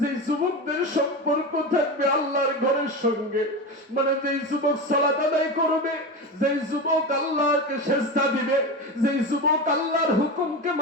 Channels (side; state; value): both; normal; correlation 0.22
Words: যে যুবকদের সম্পর্ক থাকবে আল্লাহর ঘরের সঙ্গে। মানে যেই যুবক সালাত আদায় করবে, যেই যুবক আল্লাহকে সেজদা দিবে, যেই যুবক আল্লাহর হুকুমকে